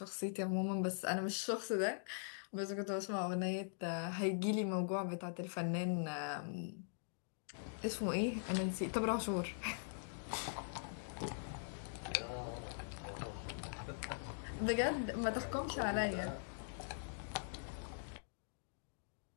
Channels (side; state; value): right; silent; digital silence